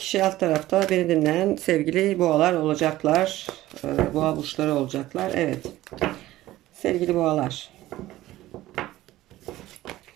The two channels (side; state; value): left; quieter; 15.8 dB